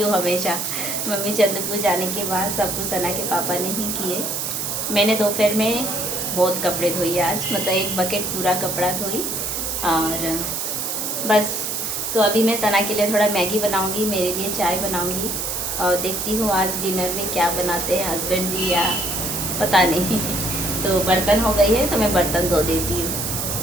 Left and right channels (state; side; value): noise; right; hiss, 2 dB below the sound